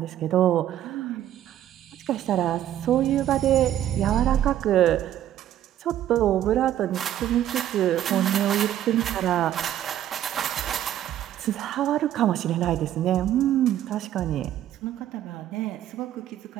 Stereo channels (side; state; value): left; quieter; 11.7 dB